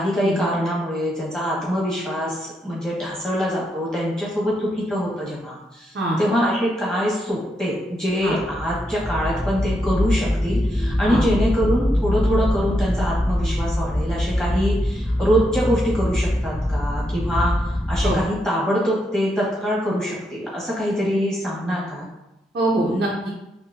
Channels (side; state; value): both; normal; correlation 0.81